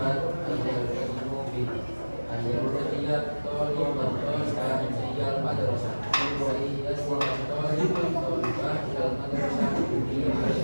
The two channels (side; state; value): both; inverted; correlation -1.00